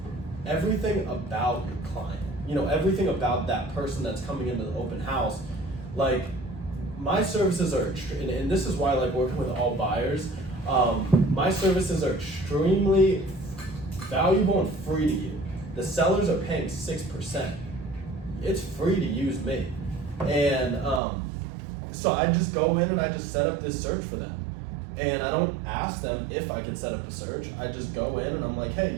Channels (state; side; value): drops out; left; at 21.0 s